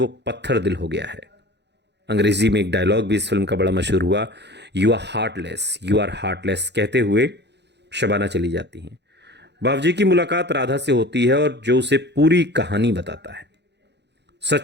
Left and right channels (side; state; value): left; late; 0.50 ms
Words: पत्थर दिल हो गया है। अंग्रेजी में एक डायलॉग भी इस फिल्म का बड़ा मशहूर हुआ, यू आर हार्टलेस कहते हुए शबाना चली जाती हैं। बावजी की मुलाकात राधा से होती है और जो उसे पूरी कहानी बताता है।